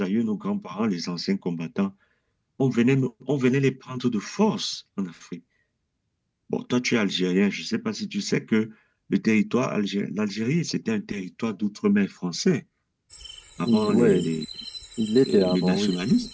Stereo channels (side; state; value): both; identical; correlation 1.00